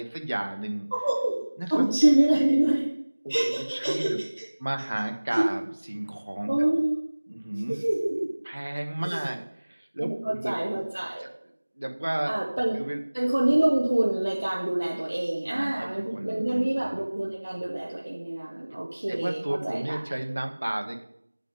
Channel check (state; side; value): inverted; both; correlation -1.00